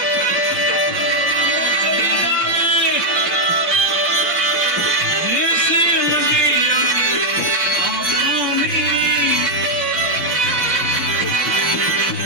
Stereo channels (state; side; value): late; left; 5.7 ms